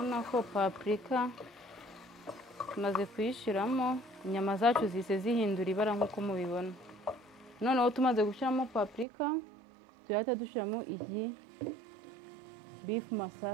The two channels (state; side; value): drops out; left; at 9.1 s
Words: ko paprika tumaze kuyishiramo, inyama zacu zise zihindura ibara nk'uko mubibona. Noneho tumaze gushiramo paprika tuhita dushiramo iyi beef